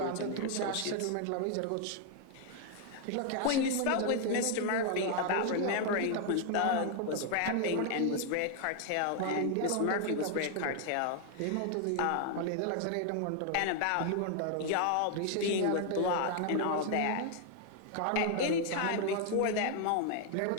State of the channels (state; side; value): different; both; correlation 0.00